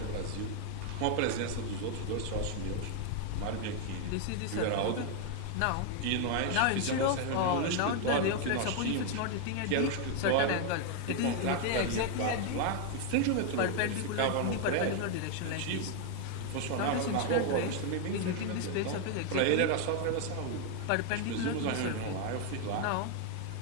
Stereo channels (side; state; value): both; different; correlation 0.00